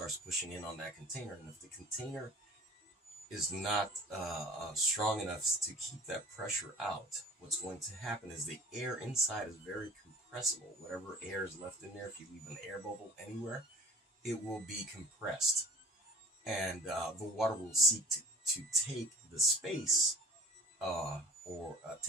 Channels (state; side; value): normal; both; correlation 0.47